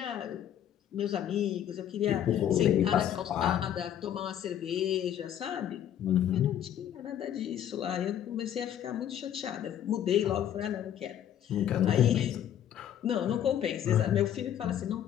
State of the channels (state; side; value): quieter; right; 10.4 dB